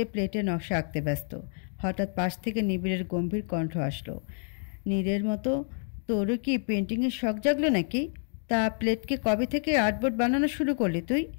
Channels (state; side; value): silent; right; 59 dB below the other